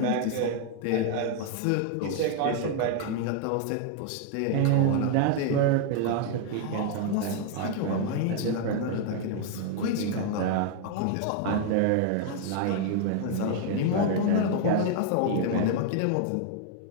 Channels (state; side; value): different; both; correlation 0.00